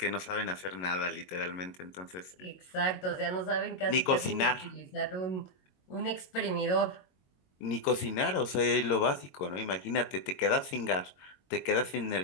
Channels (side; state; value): right; late; 22 ms